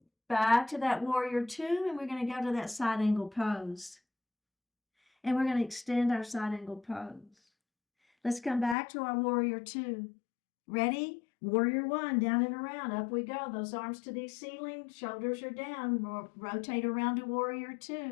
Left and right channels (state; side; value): drops out; right; at 8.8 s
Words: Back to that warrior two, and we're going to go to that side angle pose. And we're going to extend our side angle pose. Let's come back to our warrior two. Ready? Warrior one, down and around, up we go. Those arms to the ceiling, shoulders are down. Rotate around to warrior